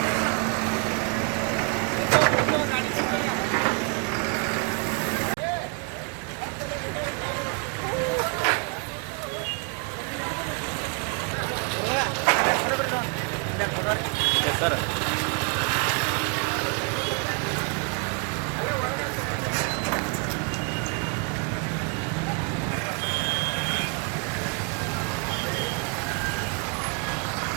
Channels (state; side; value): quieter; left; 35.5 dB